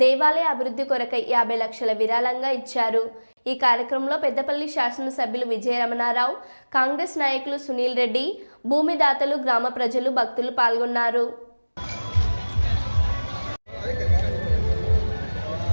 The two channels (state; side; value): inverted; both; correlation -1.00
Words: దేవాలయ అభివృద్ధి కొరకై 50 లక్షల విరాళంగా ఇచ్చారు. ఈ కార్యక్రమంలో పెద్దపల్లి శాసనసభ్యులు విజయరమణారావు, కాంగ్రెస్ నాయకులు సునీల్ రెడ్డి, భూమిదాతలు, గ్రామ ప్రజలు, భక్తులు పాల్గొన్నారు.